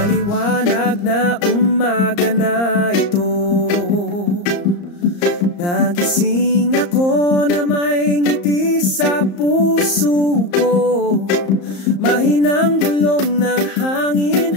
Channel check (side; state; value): right; late; 34 ms